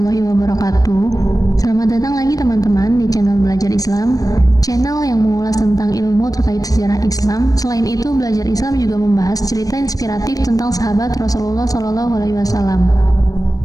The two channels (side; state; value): right; late; 0.18 ms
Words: wabarakatuh. Selamat datang lagi teman-teman di channel Belajar Islam, channel yang mengulas tentang ilmu terkait sejarah Islam. Selain itu, Belajar Islam juga membahas cerita inspiratif tentang sahabat Rasulullah SAW.